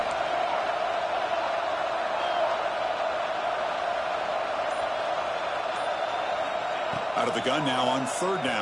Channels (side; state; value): both; identical; correlation 1.00